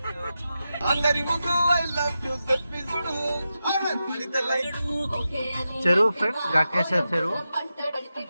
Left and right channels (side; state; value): both; inverted; correlation -0.90